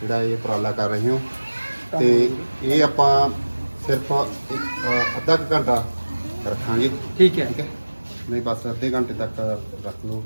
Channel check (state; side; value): inverted; both; correlation -1.00